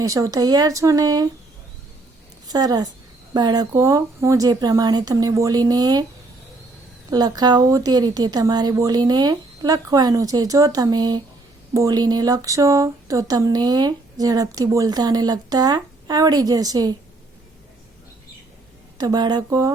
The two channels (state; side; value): quieter; left; 3.1 dB